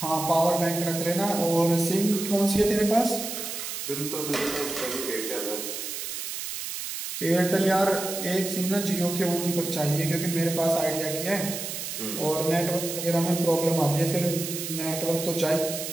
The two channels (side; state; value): right; noise; hiss, 6 dB below the sound